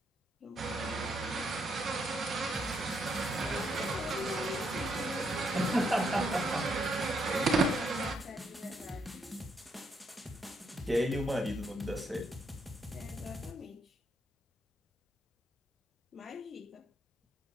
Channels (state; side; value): normal; both; correlation 0.76